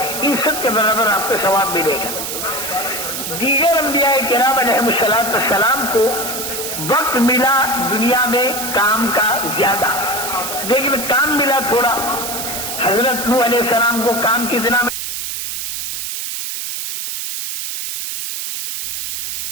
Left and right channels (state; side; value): noise; right; hiss, 4 dB below the sound